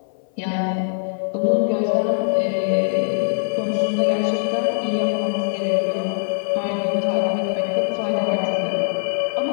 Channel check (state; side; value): silent; right; 60 dB below the other